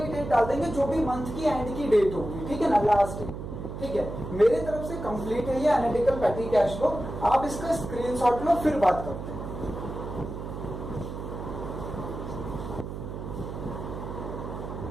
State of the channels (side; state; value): right; noise; hum, 8 dB below the sound